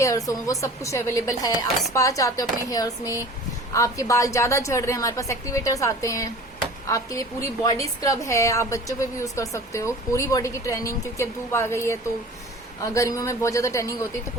हो, वो सब कुछ अवेलेबल है। आप स्पा चाहते हो अपने हेयर्स में, आपके बाल ज्यादा झड़ रहे हैं, हमारे पास एक्टिवेटर्स आते हैं। आपके लिए पूरी बॉडी स्क्रब है, आप बच्चों पे भी यूज कर सकते हो। पूरी बॉडी की ट्रेनिंग, क्योंकि अब धूप आ गई है तो गर्मियों में बहुत ज्यादा ट्रेनिंग होती है, तो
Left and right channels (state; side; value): normal; both; correlation 0.42